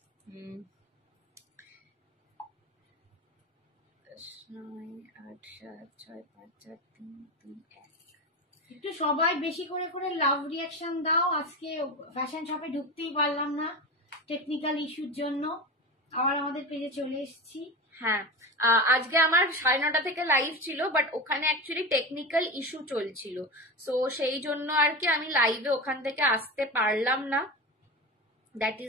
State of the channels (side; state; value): both; normal; correlation 0.24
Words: 9, 8, 7, 6, 5, 4, 3, 2, 1। একটু সবাই বেশি করে করে লাভ রিয়াকশন দাও। আজকে ফ্যাশন শপে ঢুকতেই পারলাম না টেকনিক্যাল ইস্যুর জন্য, আবার আমাদের পেজে চলে এসেছি। হ্যাঁ, আজকে আমার 9:30 থেকে লাইভ ছিল, বাট ওখানে অ্যাকচুয়ালি টেকনিক্যাল ইস্যু চলছিল, সো সেই জন্য আর কি আমি লাইভে ওখান থেকে আসতে পারলাম না। দ্যাট